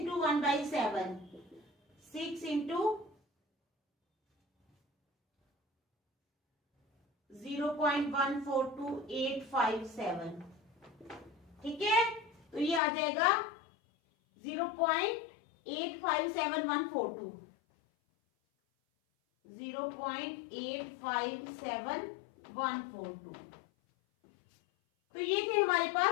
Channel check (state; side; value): drops out; right; at 12.8 s